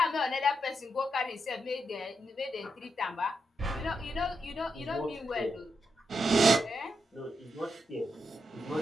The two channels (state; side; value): normal; both; correlation 0.83